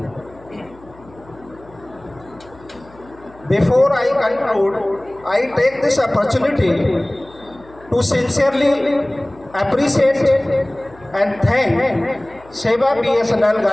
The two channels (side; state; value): left; noise; hum, 24 dB below the sound